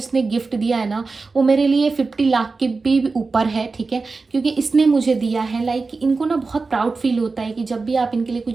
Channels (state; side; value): quieter; left; 4.1 dB